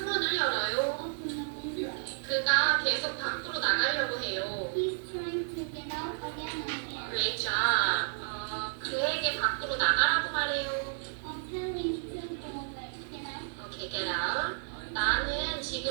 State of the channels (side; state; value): left; silent; digital silence